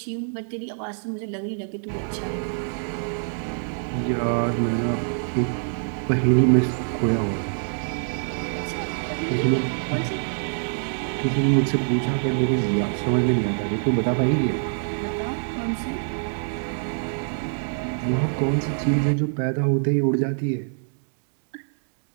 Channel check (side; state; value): left; silent; digital silence